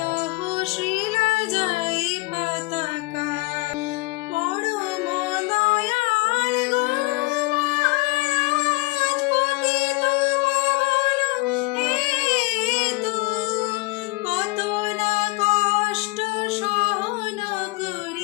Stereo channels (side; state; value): right; quieter; 24.3 dB